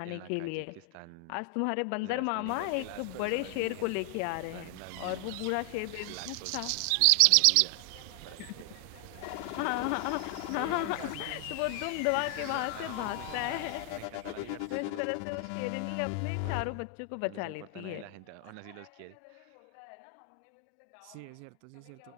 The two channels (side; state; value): both; different; correlation 0.00